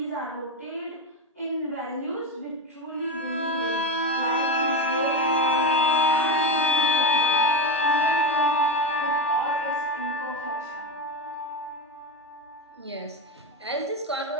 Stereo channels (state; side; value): normal; both; correlation 0.16